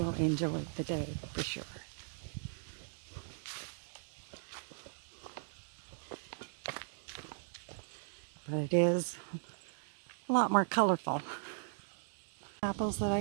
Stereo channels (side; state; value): left; silent; digital silence